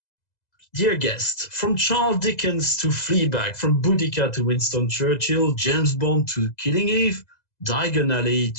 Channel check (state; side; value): late; right; 2.0 ms